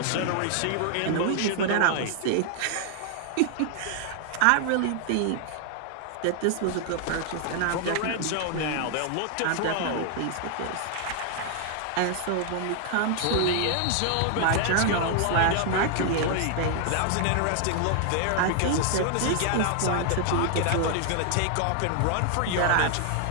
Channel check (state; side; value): different; both; correlation 0.00